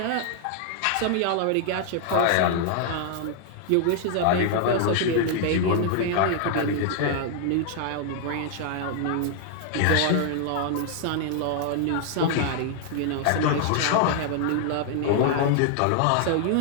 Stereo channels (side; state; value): both; different; correlation 0.00